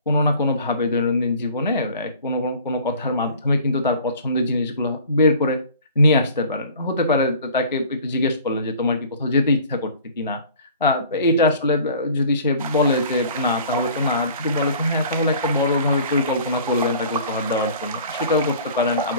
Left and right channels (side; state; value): both; inverted; correlation -0.47